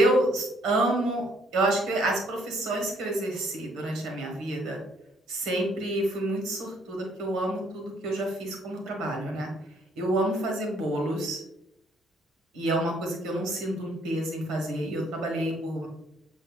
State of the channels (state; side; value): normal; both; correlation 0.66